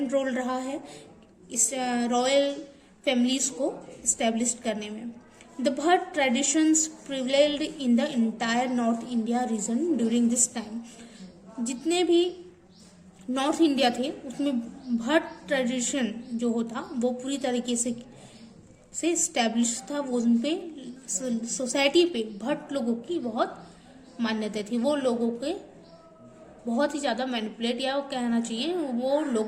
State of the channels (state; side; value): identical; both; correlation 1.00